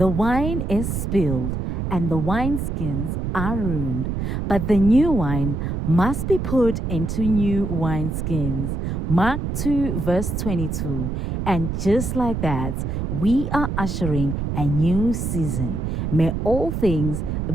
wine is spilled and the wineskins are ruined, but the new wine must be put into new wineskins. Mark 2, verse 22. And just like that, we are ushering a new season. May all things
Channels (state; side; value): noise; right; rumble, 2 dB below the sound